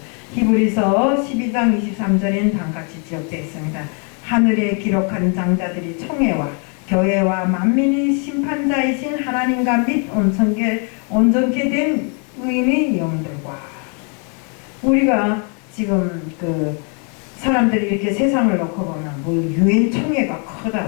히브리서 12장 23절엔 다음같이 기록되어 있습니다. 하늘에 기록한 장자들이 총회와 교회와 만민의 심판자이신 하나님과 및 온전케 된 의인의 영들과 우리가 지금 그 사람들이 이렇게 세상을 놓고 보면 뭐 유엔 총회가 크다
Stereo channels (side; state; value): right; quieter; 38.5 dB